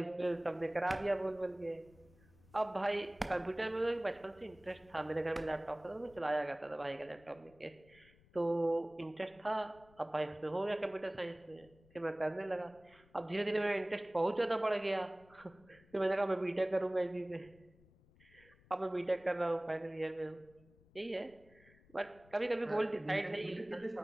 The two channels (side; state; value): left; noise; rumble, 27 dB below the sound